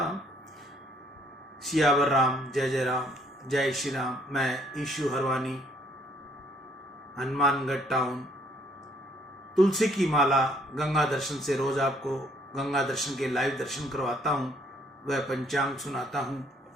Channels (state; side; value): normal; both; correlation 0.65